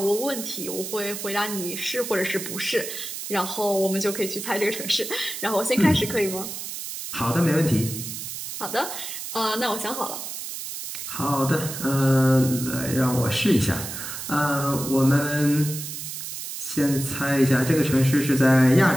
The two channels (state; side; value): noise; right; hiss, 7 dB below the sound